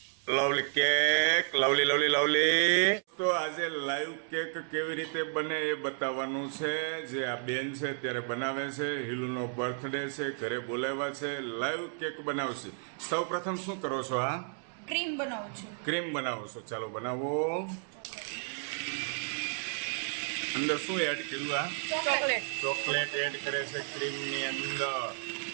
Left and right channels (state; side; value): silent; left; 56 dB below the other